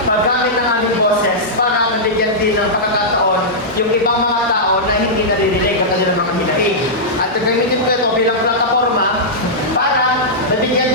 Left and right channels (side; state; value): both; normal; correlation -0.12